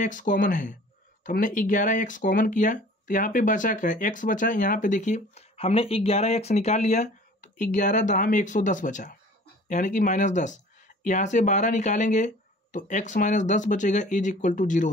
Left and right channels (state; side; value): normal; both; correlation 0.47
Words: कॉमन है, तो हमने 11x कॉमन किया तो यहाँ पे बचा क्या, x बचा। यहाँ पे देखिए हमने 11x निकाल लिया तो 11 दहा में 110 बचा, यानी कि -10। यहाँ से 12 निकालेंगे तो x - 10 बचेगा, इज इक्वल टू 0